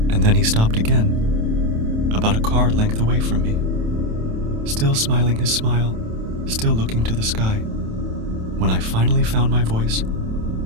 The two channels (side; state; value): left; late; 27 ms